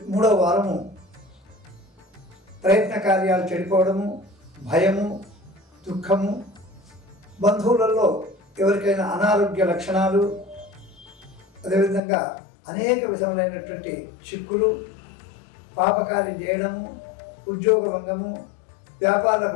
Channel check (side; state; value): right; drops out; at 12.0 s